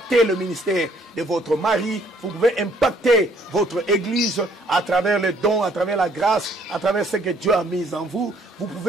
le ministère de votre mari, vous pouvez impacter votre église à travers les dons, à travers la grâce, à travers ce que Dieu a mis en vous. Vous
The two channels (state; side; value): normal; both; correlation 0.63